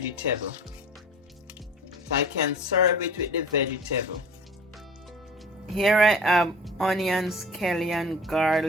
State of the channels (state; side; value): normal; both; correlation 0.42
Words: so I can serve it with the vegetable. Here I have onions, kale, and